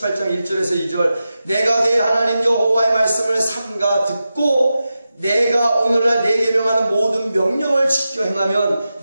1절에서 2절. 내가 내 하나님 여호와의 말씀을 삼가 듣고 내가 오늘날 내게 명하는 모든 명령을 지켜 행하면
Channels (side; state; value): both; inverted; correlation -0.92